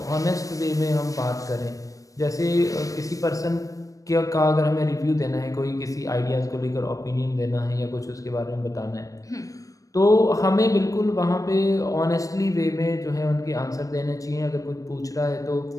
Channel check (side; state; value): right; late; 0.16 ms